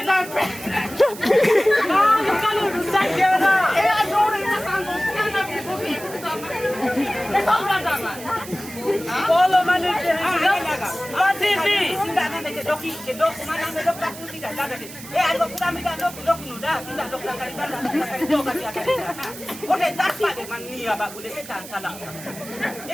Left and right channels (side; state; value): right; noise; hiss, 14 dB below the sound